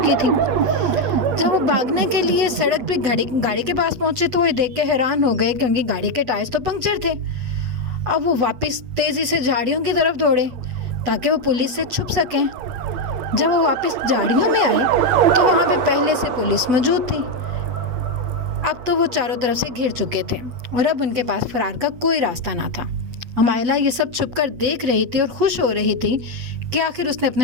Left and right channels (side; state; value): left; late; 8.5 ms